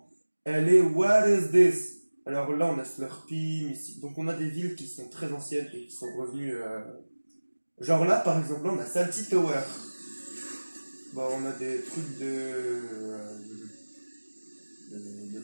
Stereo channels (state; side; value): inverted; both; correlation -1.00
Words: Elle est What is this? Alors là, on a Slurpee, Missy. Donc on a des villes qui sont très anciennes et qui sont revenues. Genre là, par exemple, là, on a Salty Tower. Bon, on a des trucs de